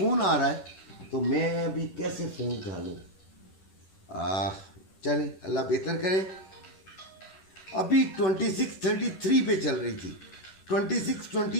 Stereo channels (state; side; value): late; right; 11 ms